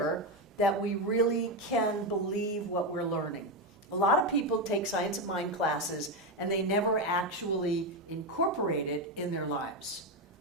that we really can believe what we're learning. A lot of people take Science of Mind classes and they never actually incorporate it in their lives.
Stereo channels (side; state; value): both; normal; correlation 0.10